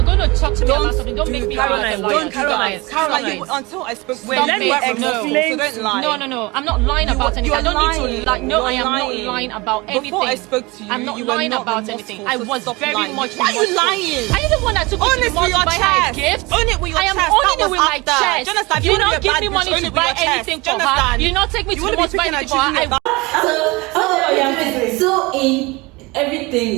going to talk to me about something, don't make me Caroline. Caroline, until I spoke to you, let me explain. So don't lie. No. I'm not lying about anything. I don't need to lie. No, I am not lying about anything. Before I spoke to you, I'm not lying about anything. I was very much. Why are you lying? Are you the one that took me to the mall to buy her a gift? Own it with your I am chest. owning it with my chest. You don't give me money to buy anything for her. You not take me to the mall to buy anything for her. So in everything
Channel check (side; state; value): left; quieter; 23.9 dB